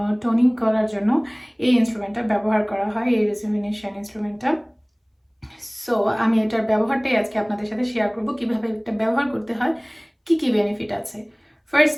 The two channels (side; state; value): both; identical; correlation 1.00